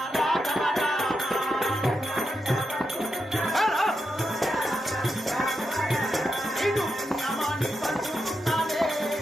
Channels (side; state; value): both; normal; correlation 0.85